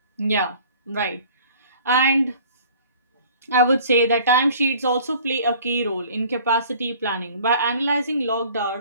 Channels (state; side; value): inverted; both; correlation -0.50